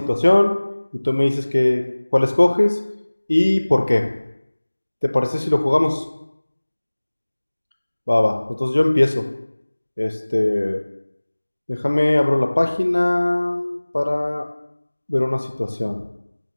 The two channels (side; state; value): both; inverted; correlation -1.00